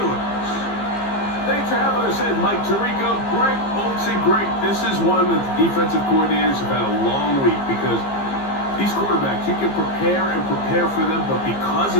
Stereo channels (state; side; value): late; right; 15 ms